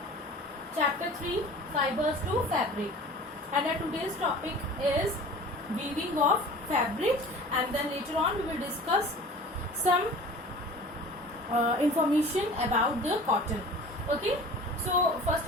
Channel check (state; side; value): normal; both; correlation 0.42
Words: Chapter 3, Fibers to Fabric. And our today's topic is weaving of fabric. And then later on we will discuss some information about the cotton. Okay. So first